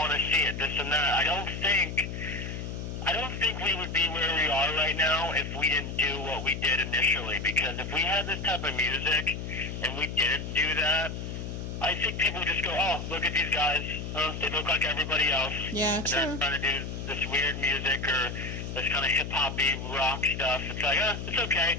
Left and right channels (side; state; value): left; noise; hum, 6 dB below the sound